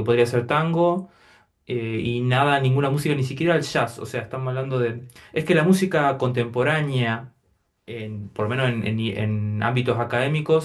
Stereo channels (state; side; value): identical; both; correlation 1.00